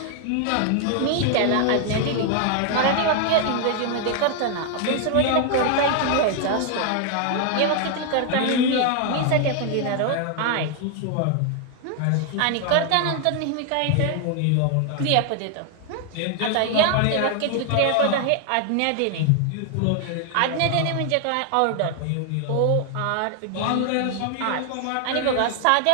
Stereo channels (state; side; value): different; both; correlation 0.00